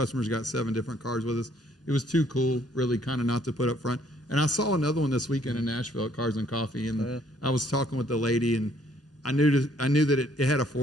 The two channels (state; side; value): normal; both; correlation 0.64